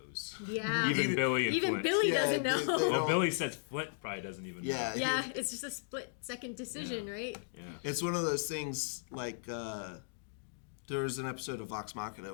Yeah. Even Billy and Flint. Billy doesn't know. Well, Billy says Flint probably doesn't even know. Yeah, it's just a split-second decision, right? Yeah. It's one of those things like there was an episode of Vox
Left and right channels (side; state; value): right; silent; digital silence